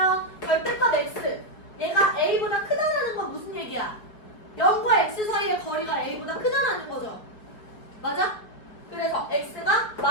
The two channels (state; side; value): late; right; 4.7 ms